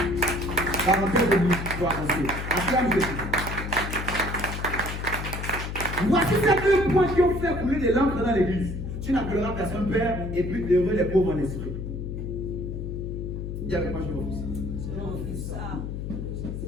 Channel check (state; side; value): noise; left; hum, 5 dB below the sound